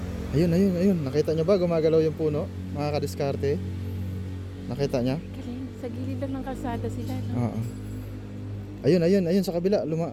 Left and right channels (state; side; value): identical; both; correlation 1.00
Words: Ayun, ayun, ayun. Nakita nyo ba gumagalaw yung puno? Mga kadiskarte. Nakita nyo? Galing. Sa gilid lang ng kalsada sila, no? Oo. Ayun, ayun, ayun sa kabila.